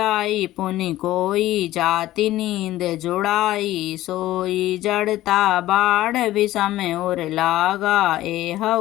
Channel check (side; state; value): right; quieter; 15.3 dB